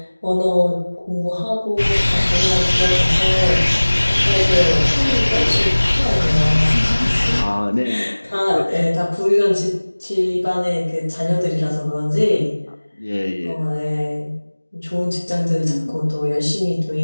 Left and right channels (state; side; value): inverted; both; correlation -1.00